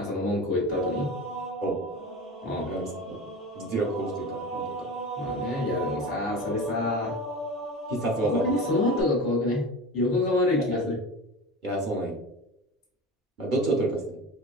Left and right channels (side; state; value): both; normal; correlation 0.30